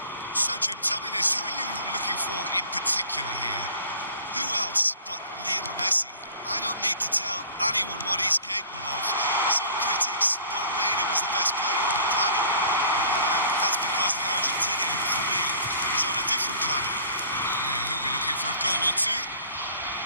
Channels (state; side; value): inverted; both; correlation -0.48